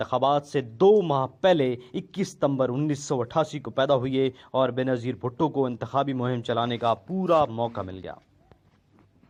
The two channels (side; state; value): both; identical; correlation 1.00